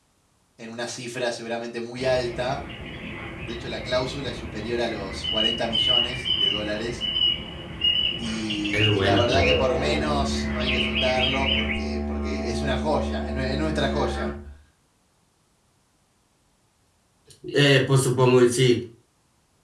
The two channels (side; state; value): both; identical; correlation 1.00